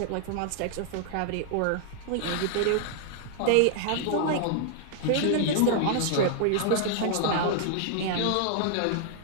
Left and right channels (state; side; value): different; both; correlation -0.01